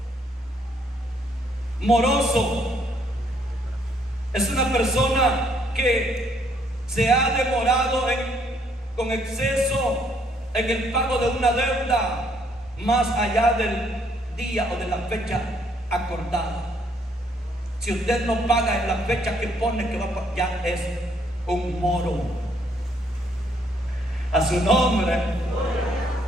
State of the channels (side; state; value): both; normal; correlation 0.68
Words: Moroso es una persona que se ha demorado con exceso en el pago de una deuda más allá del día o de la fecha acordada. Si usted no paga en la fecha que pone que va a pagar, ya es un moro. A su nombre.